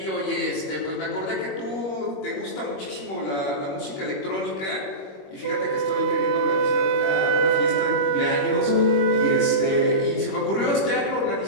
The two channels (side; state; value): right; late; 21 ms